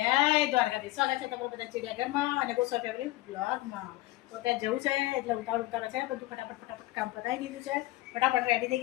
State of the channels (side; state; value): right; quieter; 18.4 dB